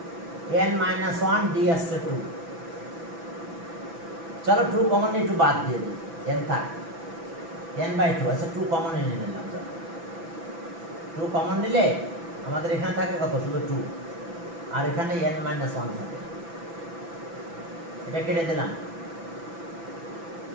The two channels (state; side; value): late; left; 6.0 ms